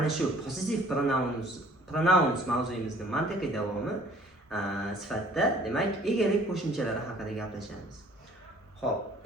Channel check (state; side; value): normal; both; correlation 0.55